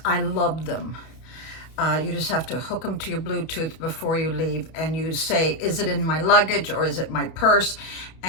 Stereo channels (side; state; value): right; late; 31 ms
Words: I love them. You just have to hook them to your Bluetooth before you leave, and you say, is it in my luggage or is it my purse?